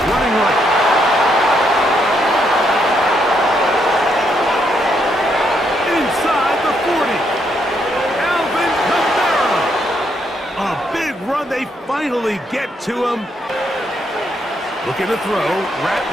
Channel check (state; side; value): normal; both; correlation 0.76